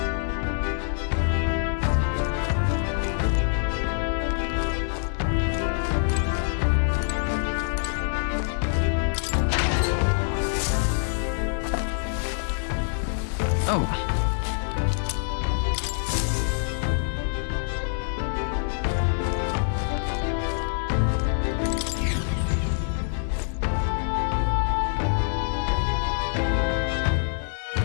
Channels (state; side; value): silent; right; digital silence